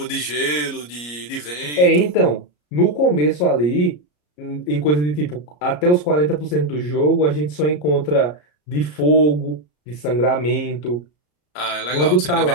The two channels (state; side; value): late; right; 34 ms